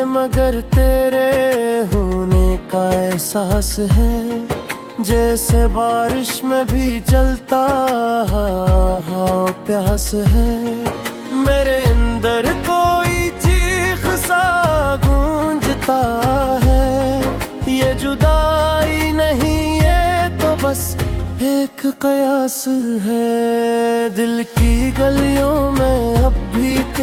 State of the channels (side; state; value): both; identical; correlation 1.00